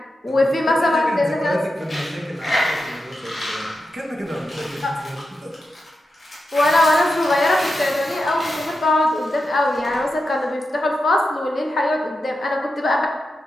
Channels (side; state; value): both; normal; correlation 0.89